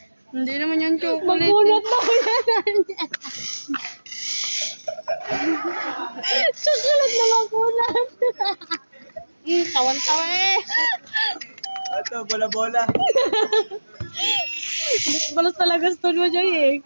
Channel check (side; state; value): both; inverted; correlation -1.00